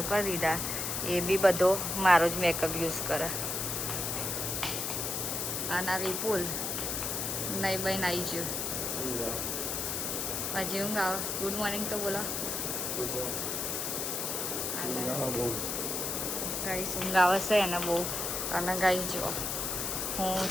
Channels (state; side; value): noise; left; hiss, 1 dB below the sound